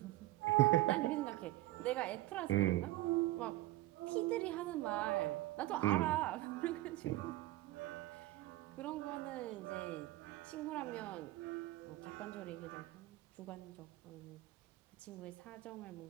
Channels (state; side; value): quieter; left; 17.0 dB